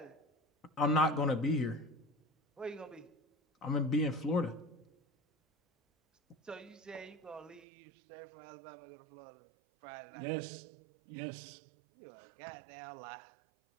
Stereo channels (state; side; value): drops out; left; at 7.7 s